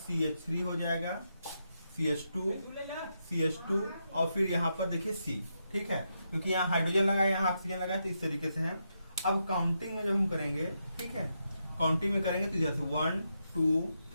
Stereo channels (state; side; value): inverted; both; correlation -0.83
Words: हो जाएगा, CH2 और फिर यहां पर देखिए C, ठीक है, क्योंकि यहाँ हाइड्रोजन लगा है, यहाँ ऑक्सीजन लगा है, तो इस तरीके से है। अब काउंटिंग में जब हम करेंगे, ठीक है, काउंटिंग में करेंगे तो जैसे 1 2